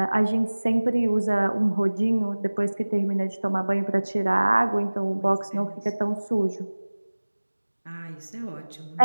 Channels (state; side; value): inverted; both; correlation -1.00